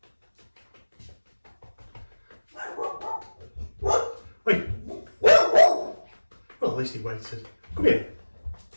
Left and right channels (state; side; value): inverted; both; correlation -1.00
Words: Wait! Well, at least he waited. Come here.